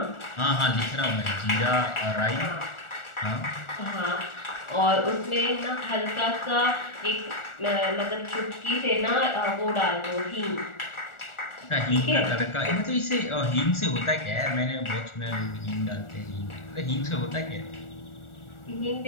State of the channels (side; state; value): right; late; 1.4 ms